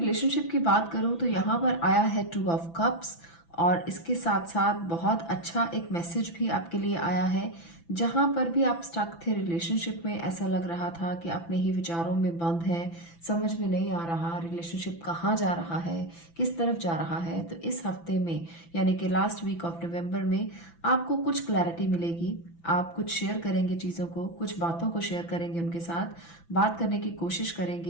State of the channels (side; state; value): right; late; 6.0 ms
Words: की बात करूं तो यहाँ पर आया है 2 ऑफ कप्स, और इसके साथ साथ बहुत अच्छा एक मैसेज भी आपके लिए आया है। जहां पर भी आप स्टक थे रिलेशनशिप में, ऐसा लग रहा था कि अपने ही विचारों में बंद हैं, समझ में नहीं आ रहा रिलेशनशिप कहाँ जा रहा है, किस तरफ जा रहा है। तो इस हफ्ते में, यानी कि लास्ट वीक ऑफ नवंबर में, आपको कुछ क्लैरिटी मिलेगी। आप कुछ शेयर करेंगे चीज़ों को, कुछ बातों को शेयर करेंगे, उनके साथ बात करने की कोशिश